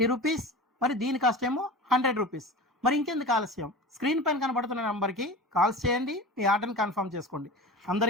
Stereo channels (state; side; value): normal; both; correlation 0.33